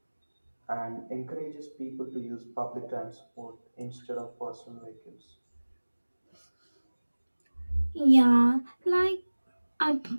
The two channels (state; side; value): inverted; both; correlation -1.00